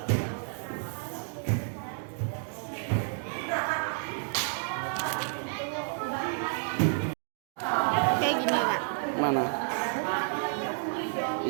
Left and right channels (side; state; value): left; silent; 57 dB below the other